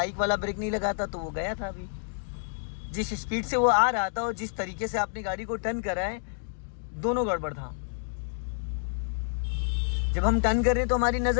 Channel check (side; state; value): right; silent; digital silence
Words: वाला ब्रेक नहीं लगाता तो वो गया था। अभी जिस स्पीड से वो आ रहा था और जिस तरीके से आपने गाड़ी को टर्न करा है, दोनों गड़बड़ था। जब हम टर्न कर रहे हैं तो हमारी